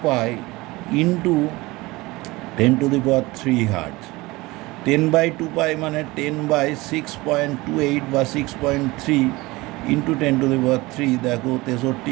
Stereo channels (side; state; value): left; quieter; 21.4 dB